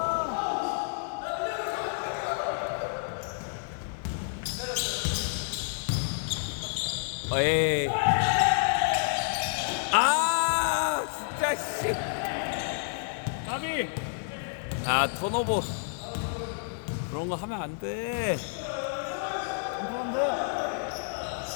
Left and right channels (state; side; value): silent; right; digital silence